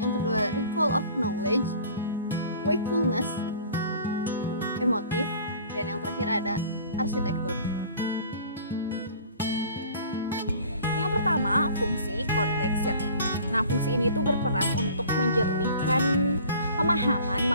kedua recall of knowledge, wakefulness, emotif, dan yang terakhir ada arsitektur. Yang pertama, fungsi context. Nah, fungsi ini tuh berperan untuk menjernihkan pemahaman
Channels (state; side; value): inverted; both; correlation -0.48